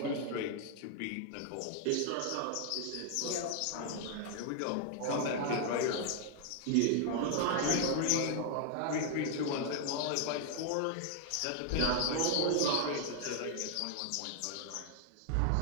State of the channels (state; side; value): different; both; correlation 0.00